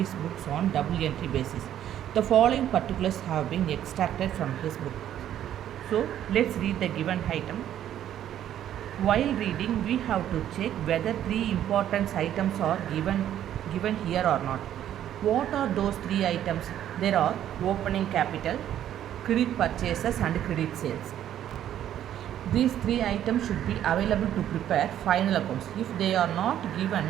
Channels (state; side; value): quieter; left; 11.1 dB